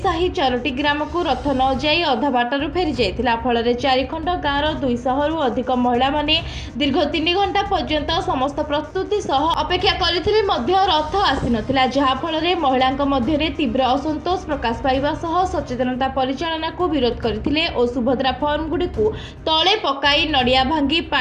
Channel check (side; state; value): both; identical; correlation 1.00